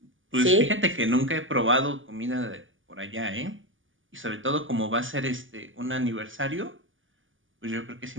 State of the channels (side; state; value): left; late; 0.57 ms